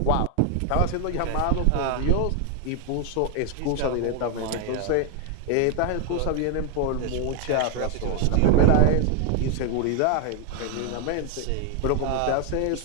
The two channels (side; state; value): both; different; correlation 0.00